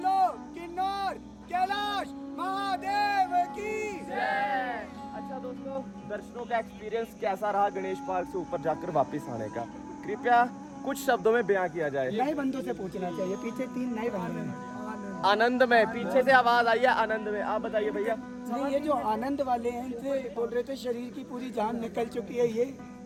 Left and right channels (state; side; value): identical; both; correlation 1.00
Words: किन्नौर कैलाश महादेव की जय। अच्छा दोस्तों, दर्शनों का एक्सपीरियंस कैसा रहा गणेश पार्क से ऊपर जाकर वापस आने का? कृपया कुछ शब्दों में बयां किया जाए। नए बंदों से पूछना चाहिए, पीछे 3 नए बंदे हैं। आनंद में, पीछे से आवाज आई है आनंद में। आप बताइए भैया। नहीं, ये जो आनंद वाले हैं इनसे बोल रहे थे शरीर की पूरी जान निकल चुकी है,